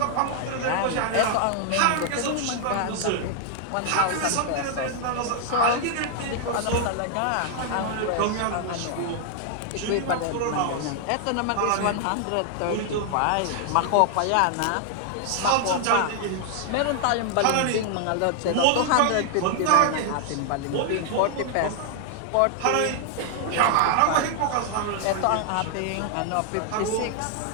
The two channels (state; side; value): different; both; correlation 0.00